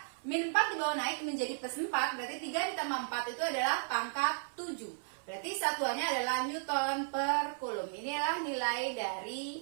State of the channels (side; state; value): left; silent; 55 dB below the other